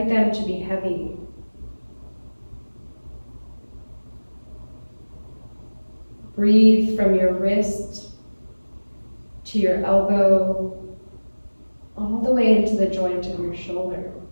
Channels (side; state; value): both; inverted; correlation -1.00